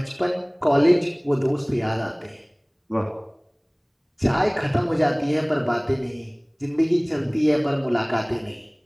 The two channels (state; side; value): identical; both; correlation 1.00